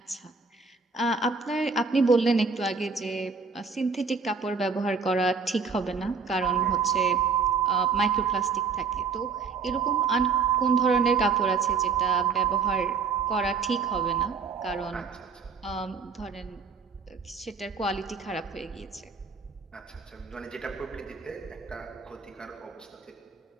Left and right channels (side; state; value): left; quieter; 5.3 dB